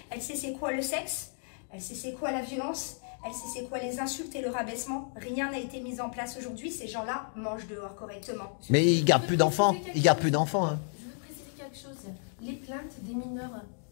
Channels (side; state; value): right; silent; 56 dB below the other